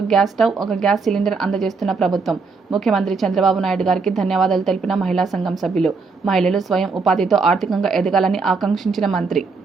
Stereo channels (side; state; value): left; quieter; 4.5 dB